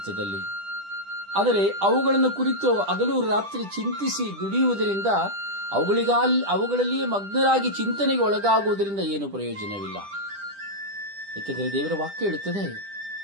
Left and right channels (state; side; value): late; left; 10 ms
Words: ಆದರೆ ಅವುಗಳನ್ನು ಕುರಿತು ಹಗಲು ರಾತ್ರಿ ಚಿಂತಿಸಿ ದುಡಿಯುವುದರಿಂದ, ಅವುಗಳಲ್ಲಿಯೇ ಮಗ್ನರಾಗಿ ಚಿಂತನೆಗೆ ಒಳಗಾಗುವುದರಿಂದ ಏನು ಪ್ರಯೋಜನವಿಲ್ಲ. ಏಕೆಂದರೆ ದೇವರ ವಾಕ್ಯ ಹೇಳುತ್ತದೆ,